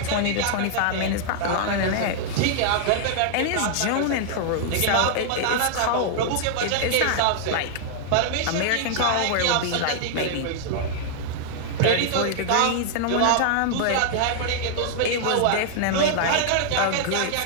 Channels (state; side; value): different; both; correlation -0.01